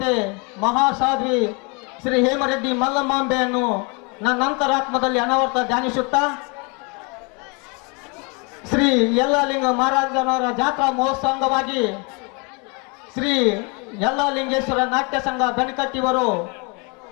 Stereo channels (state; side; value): quieter; right; 32.0 dB